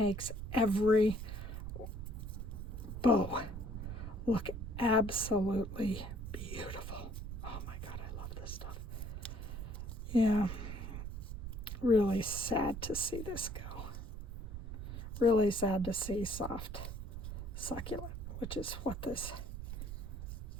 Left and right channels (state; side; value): noise; right; rumble, 7 dB below the sound